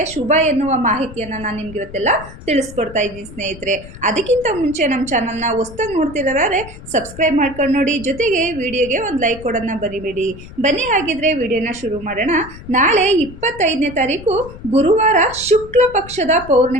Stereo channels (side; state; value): left; noise; rumble, 16 dB below the sound